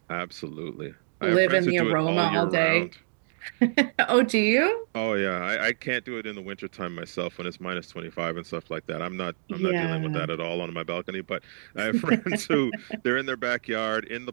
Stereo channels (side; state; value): left; silent; digital silence